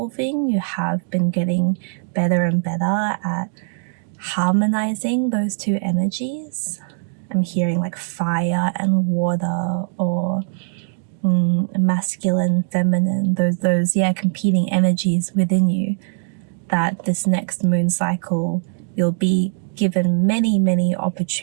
you have been getting better and better at harmonizing those two energies. I'm hearing like fire and water, or masculine, feminine, those competing energies within you, that this next moon cycle you'll be given many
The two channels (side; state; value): left; silent; digital silence